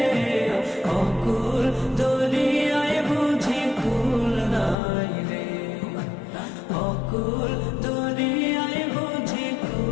অকুল দরিয়ায় বুঝি কুল নাই রে, অকুল দরিয়ায় বুঝি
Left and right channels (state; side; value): drops out; right; at 4.8 s